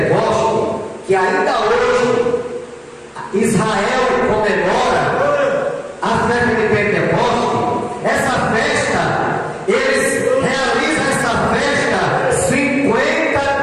que ainda hoje Israel comemora, a festa de Pentecoste, essa festa, eles realizam essa festa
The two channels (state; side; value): identical; both; correlation 1.00